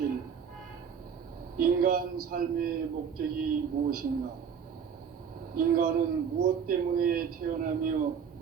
인간 삶의 목적이 무엇인가? 인간은 무엇 때문에 태어나며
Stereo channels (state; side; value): quieter; left; 7.1 dB